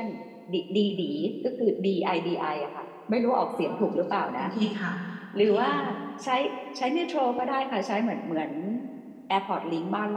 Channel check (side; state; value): both; identical; correlation 1.00